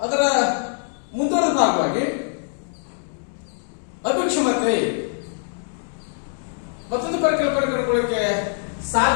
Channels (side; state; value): right; silent; digital silence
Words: ಅದರ ಮುಂದುವರೆದ ಭಾಗವಾಗಿ ಅಭಿಕ್ಷಮತೆ ಮತ್ತೊಂದು ಪರಿಕಲ್ಪನೆ ಕಂಡುಕೊಳ್ಳಕ್ಕೆ